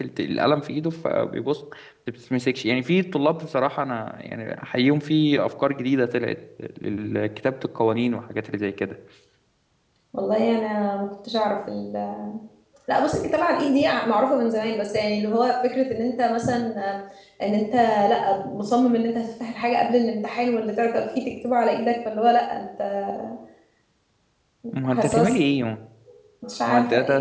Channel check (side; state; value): both; identical; correlation 1.00